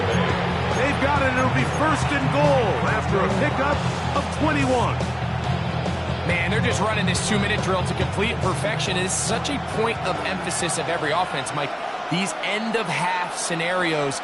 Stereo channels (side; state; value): both; identical; correlation 1.00